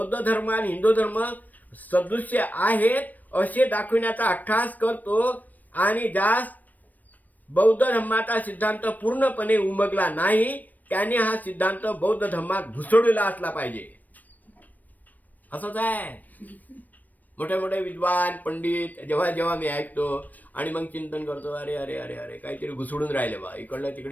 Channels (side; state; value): right; late; 0.083 ms